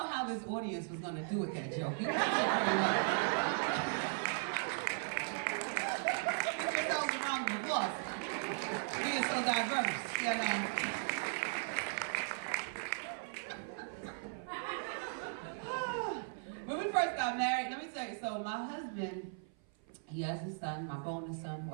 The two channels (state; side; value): silent; left; 53 dB below the other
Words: how this audience was going to do with that joke. You guys did very well. Give yourselves a round of applause. Being so diverse, you know. When we first got married, let me tell you, so my husband, he has a son, my bonus son, who